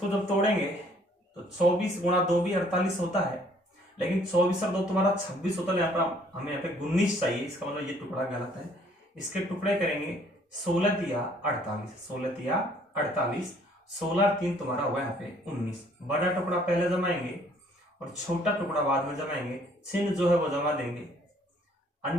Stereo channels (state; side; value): normal; both; correlation 0.61